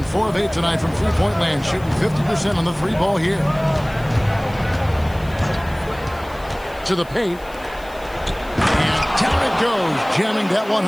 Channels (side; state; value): left; noise; hiss, 24 dB below the sound